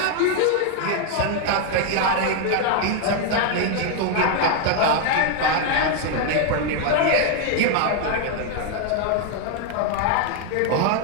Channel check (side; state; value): both; different; correlation 0.00